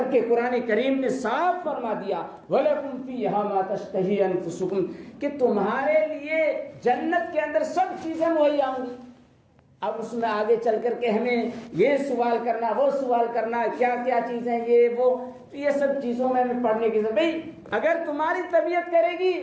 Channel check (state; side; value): identical; both; correlation 1.00